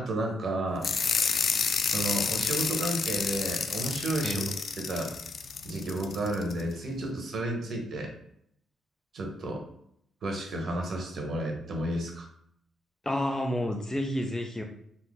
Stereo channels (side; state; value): both; normal; correlation 0.77